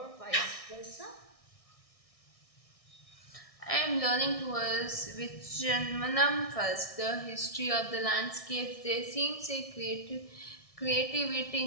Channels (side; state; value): right; late; 1.6 ms